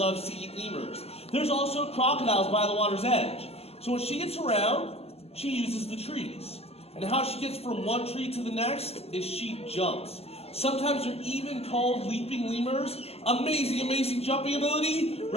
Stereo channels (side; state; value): right; late; 0.29 ms